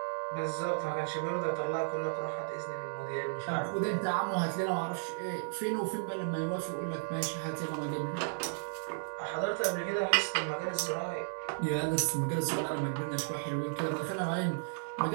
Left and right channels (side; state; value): left; silent; digital silence